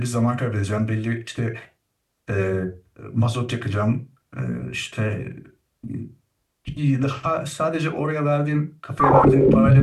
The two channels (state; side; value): identical; both; correlation 1.00